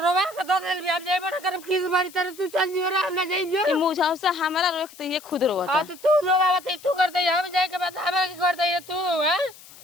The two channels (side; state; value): left; noise; hiss, 20 dB below the sound